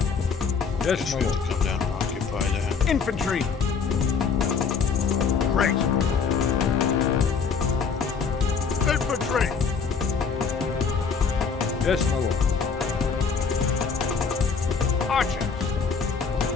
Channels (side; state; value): right; quieter; 5.7 dB